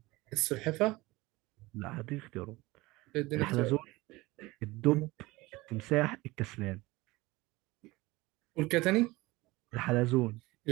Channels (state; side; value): quieter; left; 21.1 dB